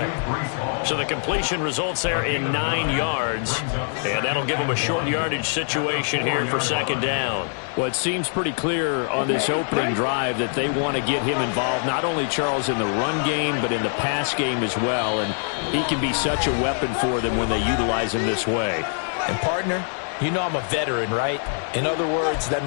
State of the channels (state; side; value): silent; right; 63 dB below the other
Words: So the completion results there in 9 yards. And that'll give them a short yardage situation here for second down. Well, it seems pretty clear on this opening drive that they want to get him involved, not only, Charles, in the run game, but in the pass game as well. And he can be such a weapon for them when they utilize him this way. And, partner, you know I'm a veteran, right? In other words, that